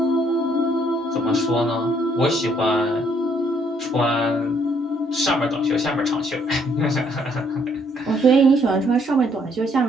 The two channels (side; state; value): both; normal; correlation 0.67